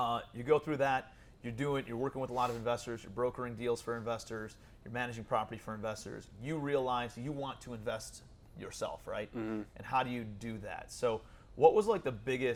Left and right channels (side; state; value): both; identical; correlation 1.00